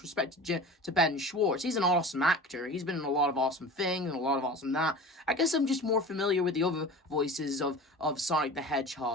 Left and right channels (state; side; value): normal; both; correlation 0.36